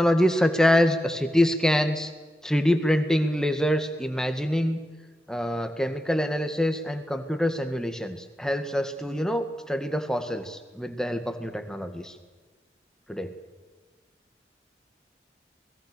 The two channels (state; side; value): normal; both; correlation 0.89